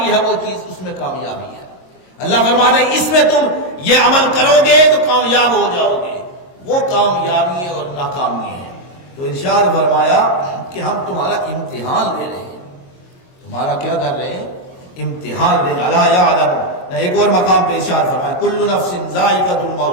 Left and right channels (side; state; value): right; late; 22 ms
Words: ہے وہ چیز، اس میں کامیابی ہے۔ اللہ فرماتا ہے اس میں تم یہ عمل کرو گے تو کامیاب ہو جاؤ گے، وہ کامیابی اور ناکامی ہیں۔ تو ارشاد فرمایا کہ ہم تمہارا امتحان لے رہے ہیں، تمہارا کیا کر رہے ہیں؟ امتحان لے رہے ہیں۔ الا یعلم، نہ ایک اور مقام پہ ارشاد فرمایا کل نفس ذائقۃ